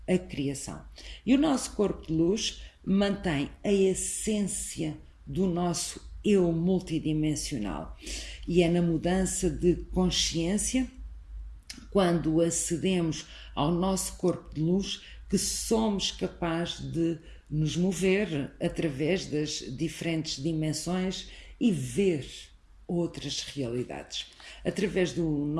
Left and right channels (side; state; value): both; identical; correlation 1.00